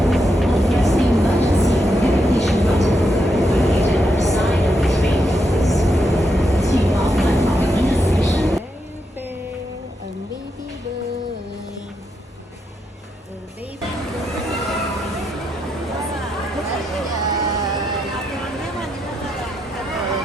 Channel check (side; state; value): both; normal; correlation 0.82